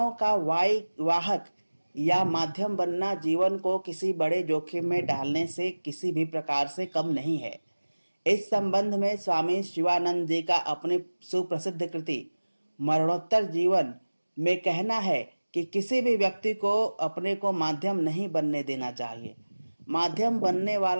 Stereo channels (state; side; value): inverted; both; correlation -1.00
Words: का वाहक या माध्यम बनना जीवन को किसी बड़े जोखिम में डालने से किसी भी प्रकार से कम नहीं है। इस संबंध में स्वामी शिवानंद जी का अपनी सुप्रसिद्ध कृति मरणोत्तर जीवन में कहना है कि किसी भी व्यक्ति को अपने को माध्यम नहीं बनने देना चाहिए। माध्यम बनने